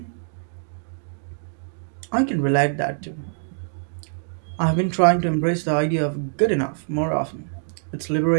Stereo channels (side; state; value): left; silent; digital silence